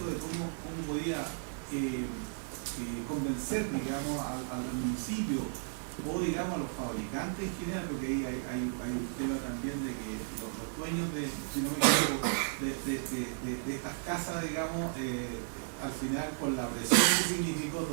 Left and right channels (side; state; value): left; silent; digital silence